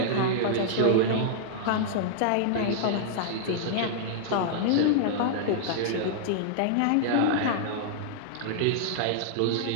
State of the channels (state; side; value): different; both; correlation -0.01